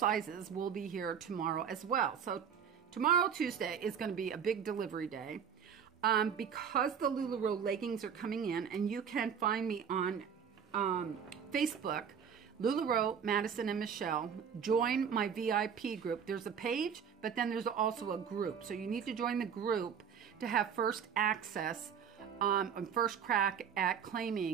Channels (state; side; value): quieter; left; 7.5 dB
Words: will be here tomorrow as well. So tomorrow, Tuesday, is going to be a big delivery day. Because the LuLaRoe leggings are coming in, and you can find me on Facebook, LuLaRoe, Madison, and Michelle. Join my VIP group. There's a page, but then there's also a group. So you need to join the group to have first access and first crack at